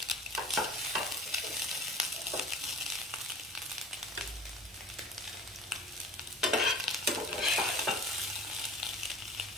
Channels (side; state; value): both; normal; correlation 0.43